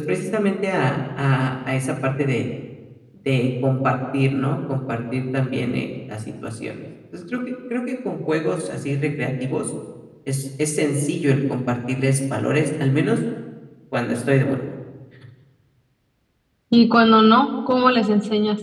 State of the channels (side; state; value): both; identical; correlation 1.00